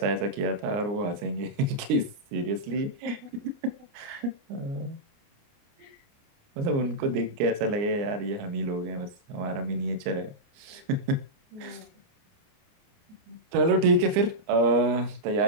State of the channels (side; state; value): left; late; 29 ms